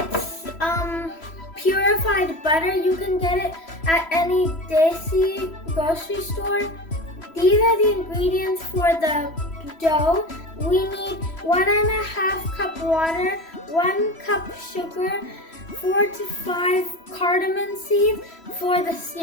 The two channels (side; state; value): right; late; 3.1 ms